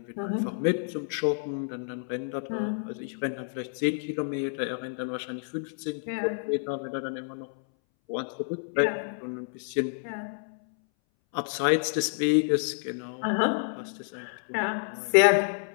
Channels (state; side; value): silent; right; 59 dB below the other